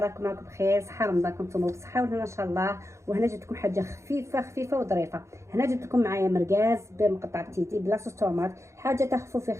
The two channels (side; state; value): left; late; 0.14 ms